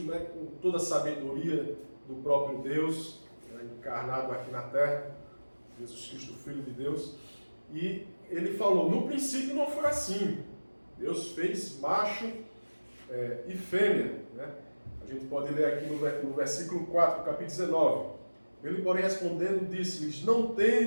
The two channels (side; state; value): both; inverted; correlation -1.00